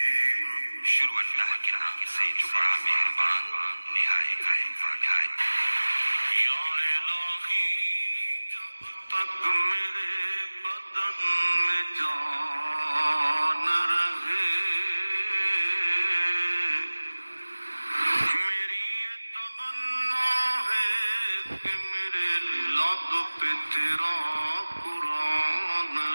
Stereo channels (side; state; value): both; inverted; correlation -1.00